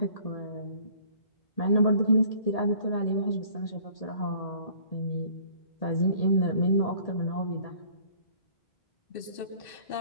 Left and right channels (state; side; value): late; right; 2.6 ms